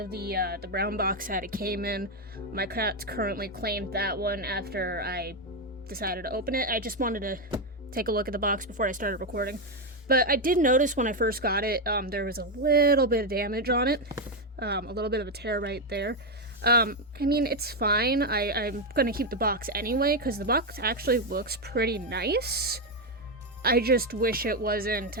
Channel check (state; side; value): normal; both; correlation 0.06